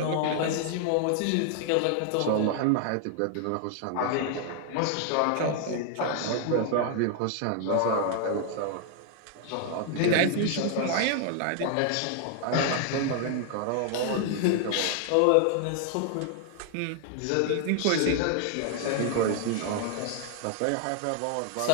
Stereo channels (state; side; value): different; both; correlation 0.00